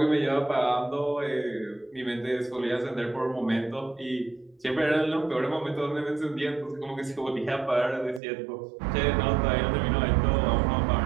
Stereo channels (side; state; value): left; drops out; at 8.2 s